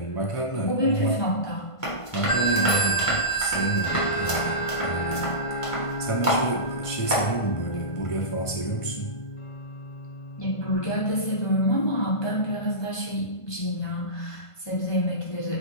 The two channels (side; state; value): right; late; 1.5 ms